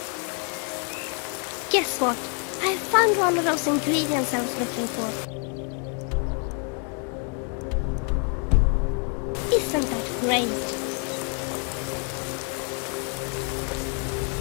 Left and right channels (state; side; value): quieter; right; 39.7 dB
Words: Guess what? I found one of those ingredients I was looking for. Isn't that great?